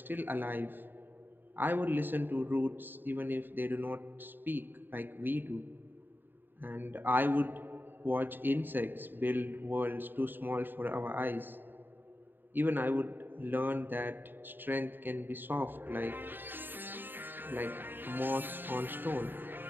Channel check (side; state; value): left; late; 0.094 ms